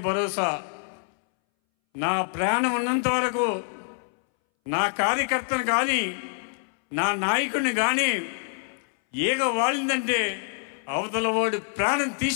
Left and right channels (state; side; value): silent; right; 61 dB below the other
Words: భరోసా. నా ప్రాణం ఉన్నంత వరకు నా కార్యకర్తను కానీ, నా నాయకుడిని కానీ ఏగ వాలిందంటే అవతల వాడు ప్రాణం